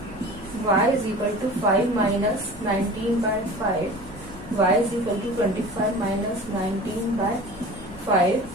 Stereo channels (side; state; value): both; normal; correlation 0.38